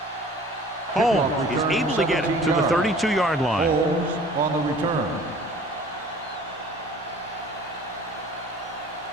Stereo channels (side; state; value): both; normal; correlation 0.49